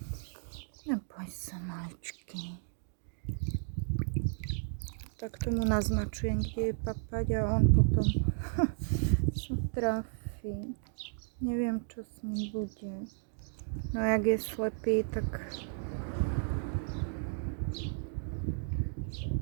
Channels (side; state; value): left; silent; digital silence